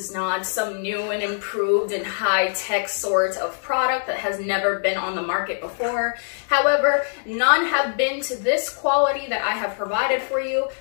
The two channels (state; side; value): silent; right; digital silence